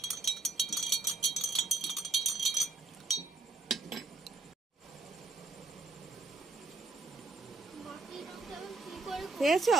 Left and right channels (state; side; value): quieter; left; 3.7 dB